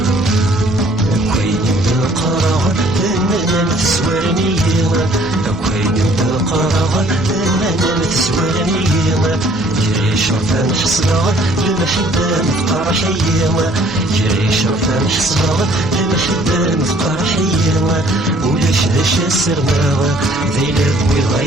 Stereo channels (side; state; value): both; normal; correlation 0.58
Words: شرفان حصلها المحبة مفقر حيوة جري شرفان حصلها المحبة مفقر حيوة ولاش داش السرماوة ذي لبوي